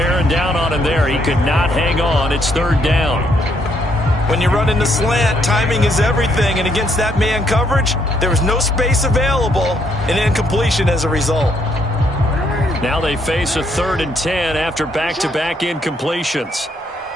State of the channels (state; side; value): normal; both; correlation 0.72